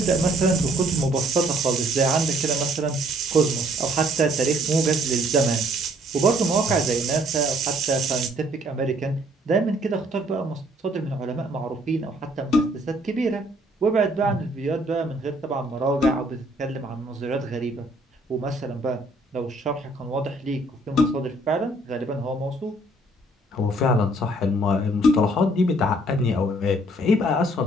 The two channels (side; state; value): both; normal; correlation 0.63